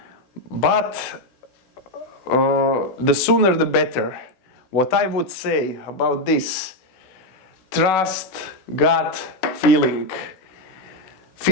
But the sooner the better. What I would say about this: trust gut feeling.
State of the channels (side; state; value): right; late; 16 ms